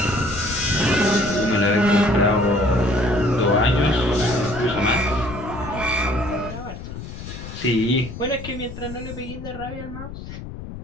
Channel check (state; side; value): noise; left; rumble, 11 dB below the sound